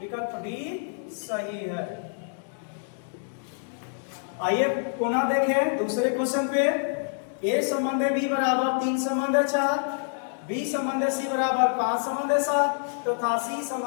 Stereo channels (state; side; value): silent; right; digital silence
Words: डी सही है। आइए पुनः देखें दूसरे क्वेश्चन पे। ए संबंध बी बराबर 3 संबंध 4, बी संबंध सी बराबर 5 संबंध 7 तथा सी